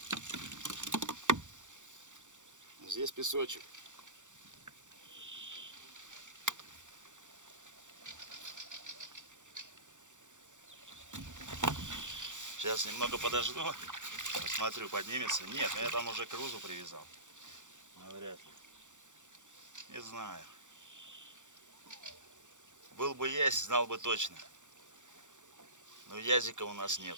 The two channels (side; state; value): left; late; 0.85 ms